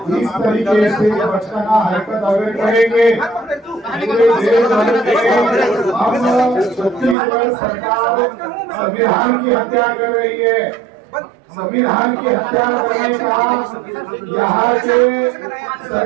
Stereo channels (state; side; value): drops out; left; at 7.2 s